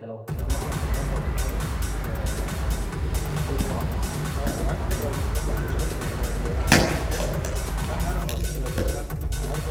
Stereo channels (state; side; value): identical; both; correlation 1.00